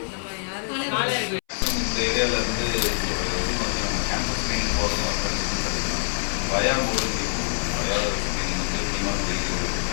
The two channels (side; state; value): right; silent; 62 dB below the other